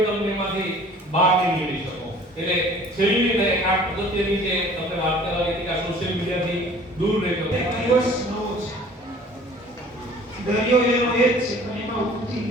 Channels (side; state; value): both; normal; correlation 0.50